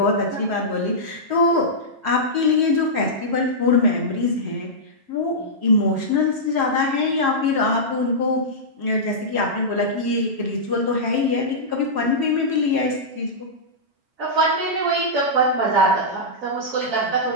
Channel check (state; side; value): late; left; 7.3 ms